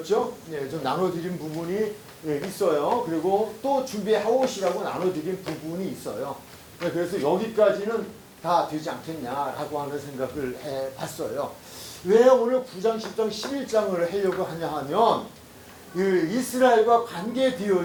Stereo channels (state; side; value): identical; both; correlation 1.00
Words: 좀 나눠드린 부분이 있어요. 그리고 또 준비해오시라고 나눠드린 부분이 있어요. 그래서 여기까지는 다 되지 않겠냐라고 하는 생각을 해봤어요. 왜 오늘 9장, 10장, 11장을 하려고 하냐 하면 이스라엘과